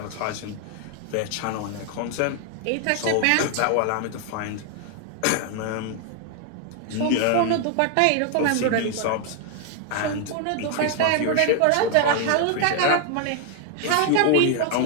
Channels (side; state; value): both; different; correlation 0.00